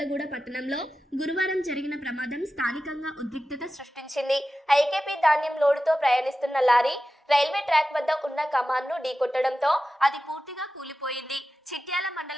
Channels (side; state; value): both; normal; correlation 0.93